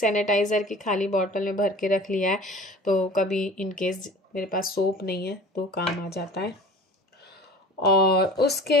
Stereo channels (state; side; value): normal; both; correlation 0.42